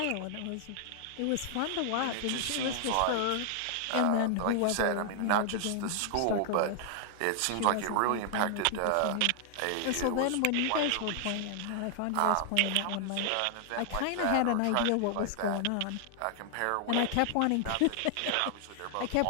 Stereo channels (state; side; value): different; both; correlation 0.00